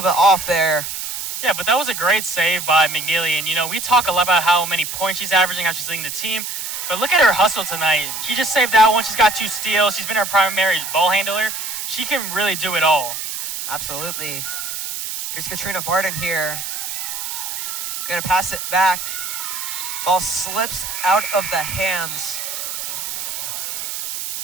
bit off there. Yeah, but that was a great save by McNeely. And, you know, we talk a lot about how many points she's averaging, how she's leading the team. But look at her hustle tonight. She just saved that one. She's got 2 steals. She's been our primary ball handler. She can really do it all. Absolutely. Here's Katrina Barton here. Gonna pass it back. Ball slips out of the hands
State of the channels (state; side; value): noise; right; hiss, 5 dB below the sound